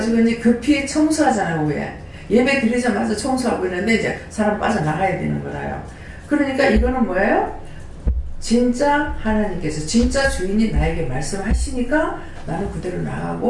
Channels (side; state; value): both; identical; correlation 1.00